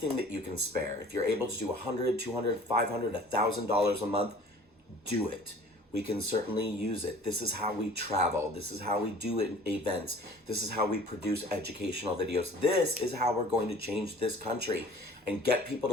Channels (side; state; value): both; normal; correlation 0.48